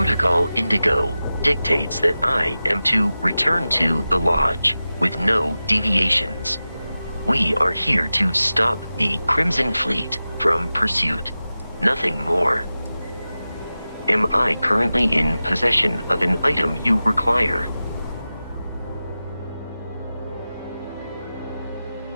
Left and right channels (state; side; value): inverted; both; correlation -0.95